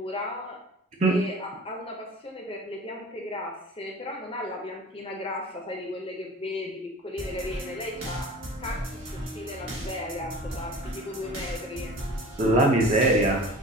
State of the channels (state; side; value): normal; both; correlation 0.41